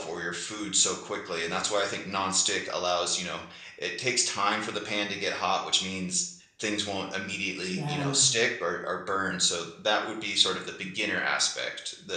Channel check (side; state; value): both; identical; correlation 1.00